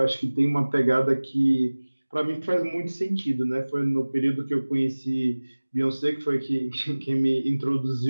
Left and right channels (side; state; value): both; inverted; correlation -1.00